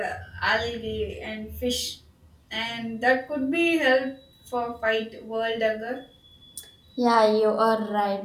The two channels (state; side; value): identical; both; correlation 1.00